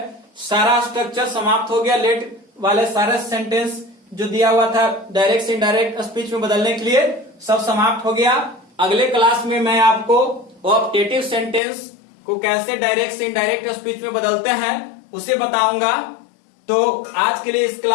सारा स्ट्रक्चर समाप्त हो गया। लेट वाले सारे सेंटेंस जो दिया हुआ था डायरेक्ट से इनडायरेक्ट स्पीच में बदलने के लिए सब समाप्त हो गया। अगले क्लास में मैं आपको ऑप्टेटिव सेंटेंस को कैसे डायरेक्ट से इनडायरेक्ट स्पीच में बदलते हैं उसे बताऊंगा। तो आज के लिए इस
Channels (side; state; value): right; drops out; at 11.6 s